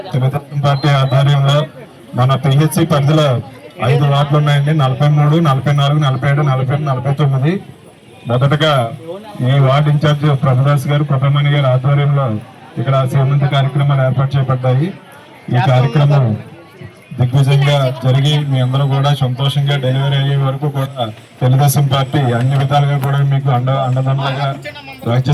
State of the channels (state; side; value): identical; both; correlation 1.00